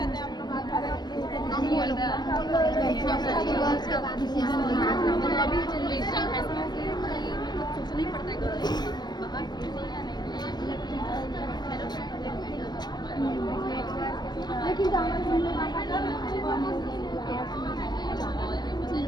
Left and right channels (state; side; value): late; right; 0.20 ms